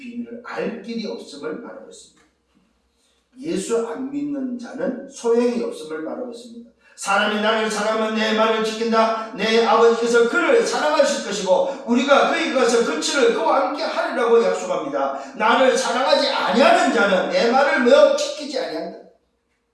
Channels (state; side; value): identical; both; correlation 1.00